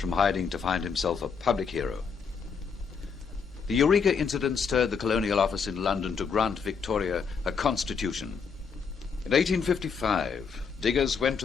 hiding to find himself a public hero. The Eureka incident stirred the Colonial Office in London to grant Victoria a constitution. In 1855, diggers went to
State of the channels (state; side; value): quieter; right; 5.9 dB